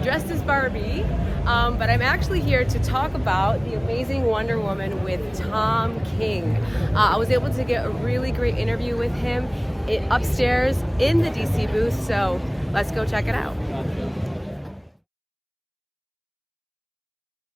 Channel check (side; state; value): both; identical; correlation 1.00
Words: dressed as Barbie, but I'm actually here to talk about the amazing Wonder Woman with Tom King. I was able to get a really great interview with him upstairs in the DC booth, so let's go check it out.